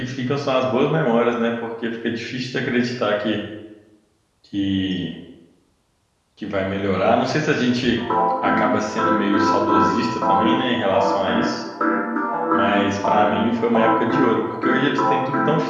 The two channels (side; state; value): both; identical; correlation 1.00